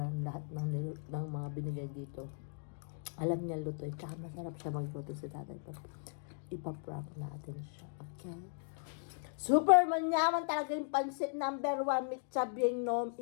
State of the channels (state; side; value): silent; right; digital silence